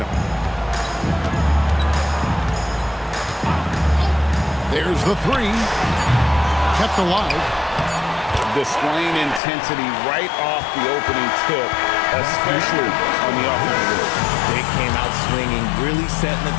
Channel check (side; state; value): right; drops out; at 9.4 s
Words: them. There's the three. Kept alive. Displaying intensity right off the opening tip, especially on the offensive end. They came out swinging, really setting the